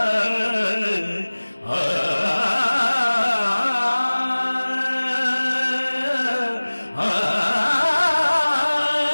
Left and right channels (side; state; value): both; inverted; correlation -1.00